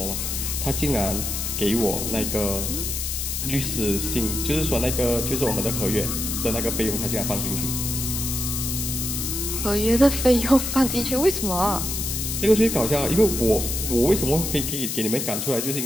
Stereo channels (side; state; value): left; noise; hiss, 3 dB below the sound